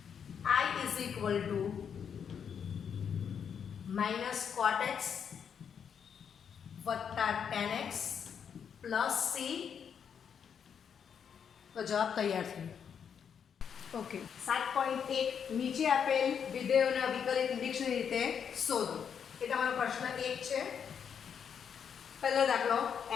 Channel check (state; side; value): quieter; right; 7.5 dB